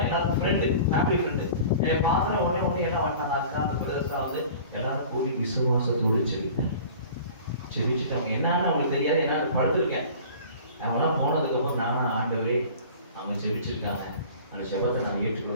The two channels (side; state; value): both; inverted; correlation -0.43